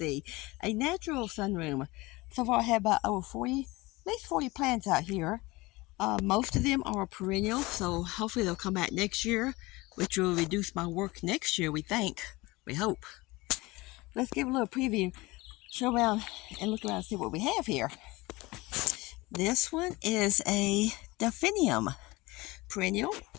a natural sunroom. So far I have about over 40, at least 40 plants out here. Most of them are perennial, so hopefully they'll come back next year, which will reduce my work next year, we think. We hope. Let's give a little preview, show around and look around and see what we have here. This one is a delphinium perennial,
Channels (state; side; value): quieter; right; 21.9 dB